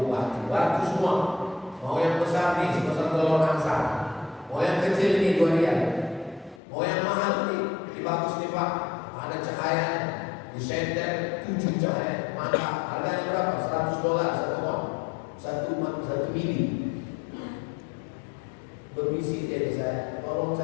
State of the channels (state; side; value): drops out; right; at 6.6 s